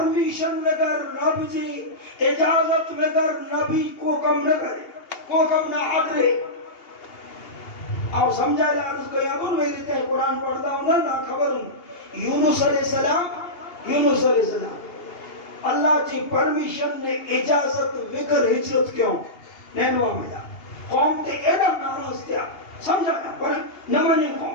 بگر رب جی اجازت بگر نبی کو کم نہ کرے, کو کم نہ آدرے. آپ سمجھائے لارس کو یادون میری تے قرآن پڑھتا ہوں نہ خبر ہوں. یونس علیہ السلام اللہ جی پرمیشن نے اجازت بگر ہجرت کیوں نینوا میں جا قوم تے ایڈا ناراض تھیا. سمجھا پر نہ مانے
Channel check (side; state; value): right; late; 2.8 ms